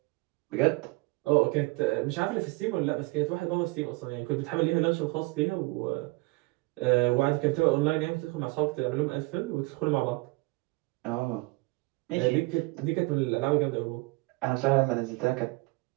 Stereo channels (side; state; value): left; quieter; 24.5 dB